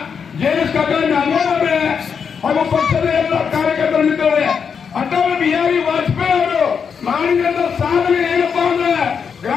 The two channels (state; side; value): quieter; right; 6.5 dB